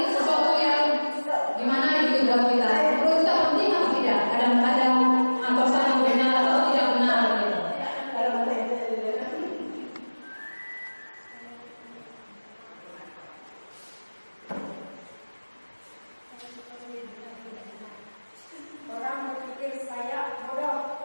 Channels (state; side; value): inverted; both; correlation -1.00